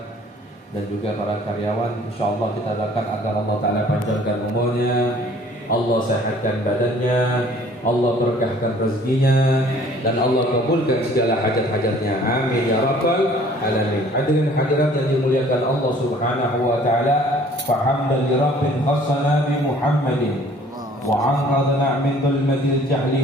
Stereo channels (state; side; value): normal; both; correlation 0.54